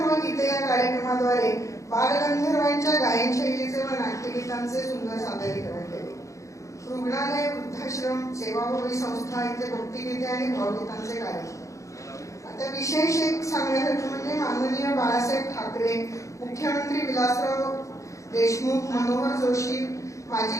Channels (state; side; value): late; right; 0.15 ms